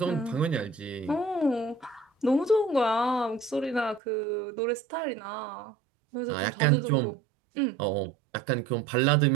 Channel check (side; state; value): left; drops out; at 4.0 s